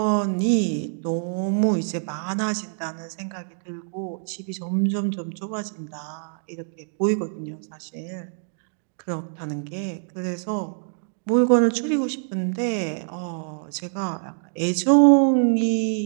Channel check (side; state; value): left; silent; digital silence